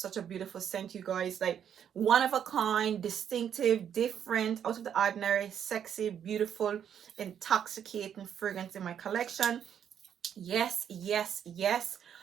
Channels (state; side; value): quieter; left; 8.8 dB